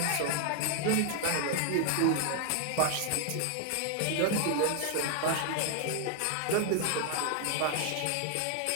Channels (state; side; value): different; both; correlation 0.00